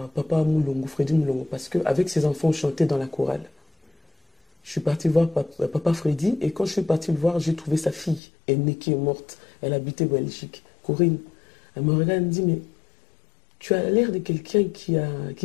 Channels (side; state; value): right; drops out; at 8.2 s